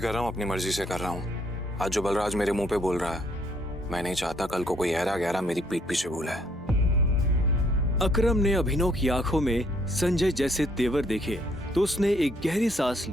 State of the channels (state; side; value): normal; both; correlation 0.68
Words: रहा हूँ अपनी मर्जी से कर रहा हूँ। आज जो बलराज मेरे मुंह पे बोल रहा है, मैं नहीं चाहता कल को कोई ऐरा गहरा मेरी पीठ पीछे बोला है। अकरम ने अभिनव की आंखों में संजय जैसे तेवर देखे तो उसने एक गहरी सांस